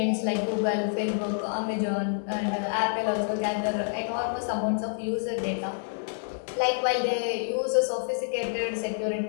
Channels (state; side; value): silent; right; digital silence